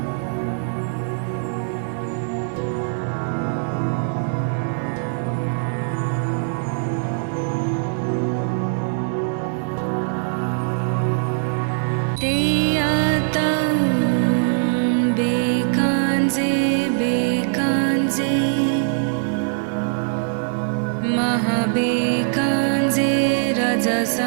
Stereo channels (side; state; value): left; silent; digital silence